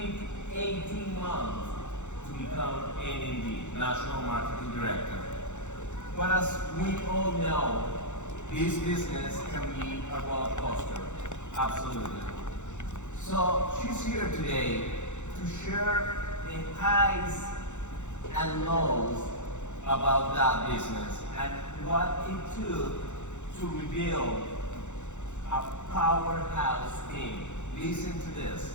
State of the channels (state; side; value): late; right; 0.84 ms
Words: 18 months to become NMD, National Marketing Director. But as we all know, this business can be a roller coaster, absolutely. So she's here today to share the highs and lows about that business and what it took to rebuild a powerhouse team. Listen to